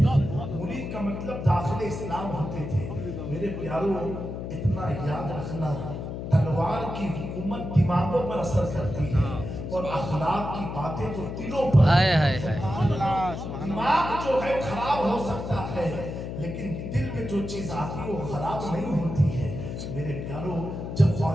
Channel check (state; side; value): noise; left; hum, 6 dB below the sound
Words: مرید کا مطلب داخل اسلام ہوتے تھے. میرے پیاروں, اتنا یاد رکھنا, تلوار کی حکومت دماغوں پر اثر کرتی ہے, اور اخلاق کی باتیں تو دلوں پر. دماغ جو ہے خراب ہو سکتا ہے, لیکن دل میں جو چیز آتی ہے وہ خراب نہیں ہوتی ہے. میرے پیاروں, جب